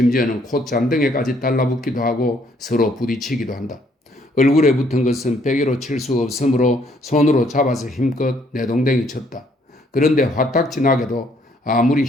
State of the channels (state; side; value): normal; both; correlation 0.66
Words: 콧잔등에까지 달라붙기도 하고 서로 부딪히기도 한다. 얼굴에 붙은 것은 베개로 칠 수 없으므로 손으로 잡아서 힘껏 내동댕이 쳤다. 그런데 화딱지나게도 아무리